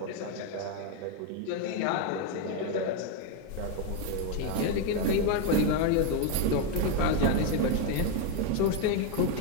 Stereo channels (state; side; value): different; both; correlation 0.02